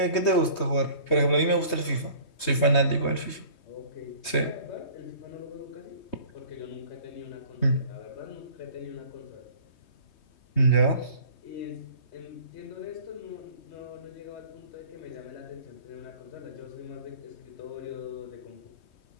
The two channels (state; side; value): late; right; 3.2 ms